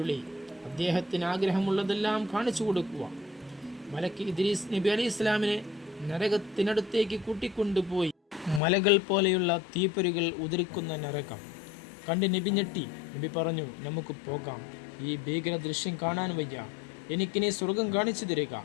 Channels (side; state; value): right; drops out; at 8.6 s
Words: അദ്ദേഹത്തിന് ആഗ്രഹമുള്ളതെല്ലാം കാണിച്ചു കൊടുക്കുക. മലക്ക് ഇദ്രീസ് നബി അലൈഹി ഇസ്ലാമിനെ നരകത്തിനടുത്തേക്ക് കൂട്ടിക്കൊണ്ടുപോയി. മലകൾ പോലെയുള്ള തീപ്പൊരികൾ ഉതിർക്കുന്ന നരകം കണ്ട് നബി ഞെട്ടി. നബി പറഞ്ഞു, നമുക്ക് പോകാം. ഈ ഭീകര ദൃശ്യം കാണാൻ വയ്യ. എനിക്കിനി സ്വർഗം കാണിച്ചു തരിക.